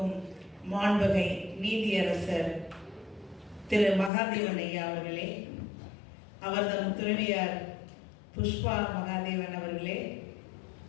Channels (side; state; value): right; drops out; at 4.1 s